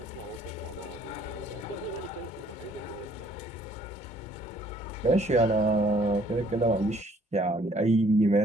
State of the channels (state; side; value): normal; both; correlation 0.61